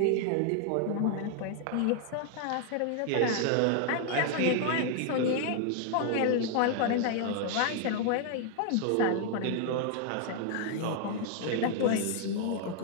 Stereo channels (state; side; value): different; both; correlation 0.00